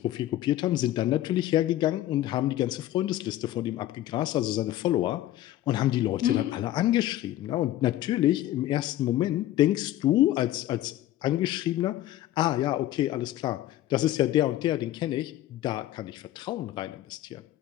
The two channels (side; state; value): right; quieter; 14.0 dB